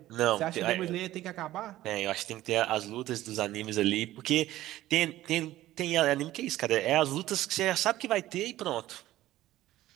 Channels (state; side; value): quieter; left; 15.0 dB